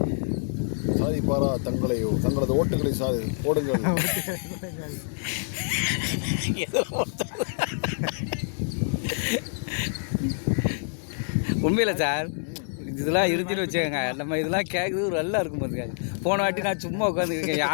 சாதிப்பாரா? தங்களது ஓட்டுகளை போடுங்கள். உண்மையில சார் இதெல்லாம் இருந்துன்னு வச்சுக்கோங்க. நம்ம இதெல்லாம் கேட்குறது நல்லா இருக்கும் பார்த்துக்காங்க. போன வாட்டி நான் சும்மா உட்காந்துருக்கேன்,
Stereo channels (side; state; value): right; silent; 61 dB below the other